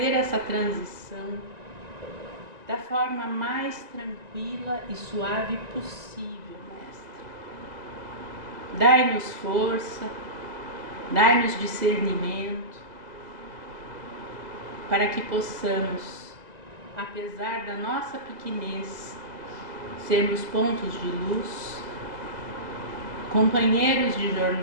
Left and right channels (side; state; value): left; late; 1.9 ms